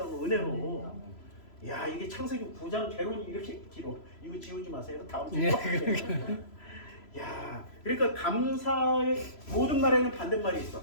은혜로. 야, 이게 창세기 9장 개론이 이렇게 길어. 이거 지우지 마세요. 다음 주에. 야, 그러니까 감사의 모든 말에는 반대말이 있어.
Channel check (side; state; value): right; late; 3.0 ms